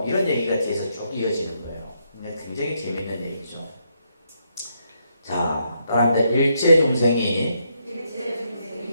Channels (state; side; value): inverted; both; correlation -0.77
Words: 이런 얘기가 뒤에서 쭉 이어지는 거예요. 근데 굉장히 재밌는 얘기죠. 자, 따라합니다. 일체 중생이